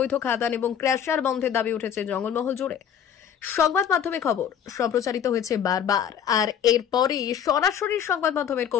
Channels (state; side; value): quieter; right; 8.7 dB